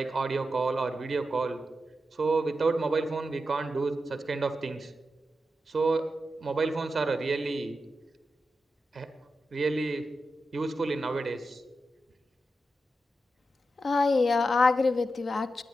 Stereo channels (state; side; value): normal; both; correlation 0.89